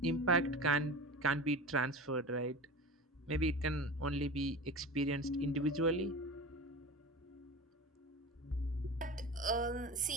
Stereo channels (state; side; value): normal; both; correlation 0.31